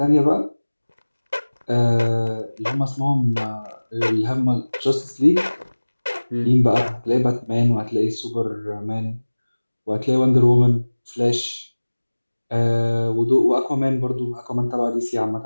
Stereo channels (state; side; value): inverted; both; correlation -1.00